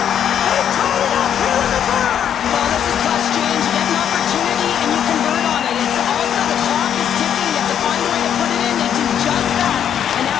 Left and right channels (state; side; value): quieter; right; 9.2 dB